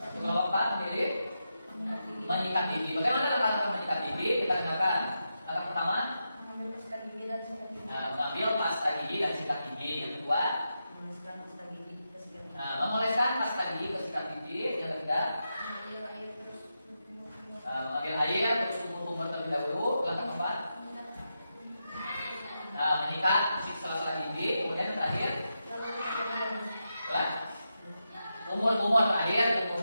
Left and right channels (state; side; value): inverted; both; correlation -0.87